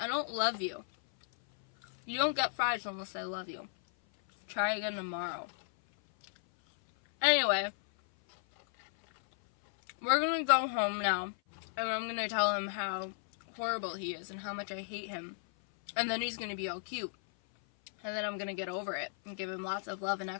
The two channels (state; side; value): silent; right; 55 dB below the other